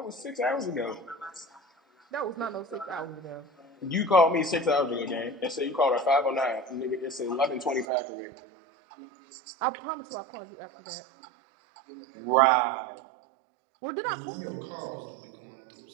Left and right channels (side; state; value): left; drops out; at 7.9 s